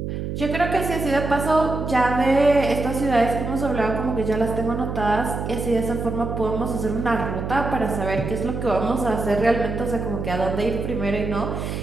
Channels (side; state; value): right; noise; hum, 4 dB below the sound